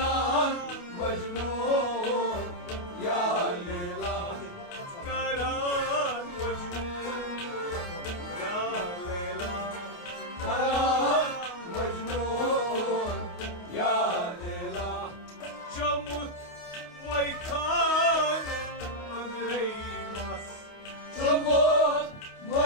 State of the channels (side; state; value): right; late; 29 ms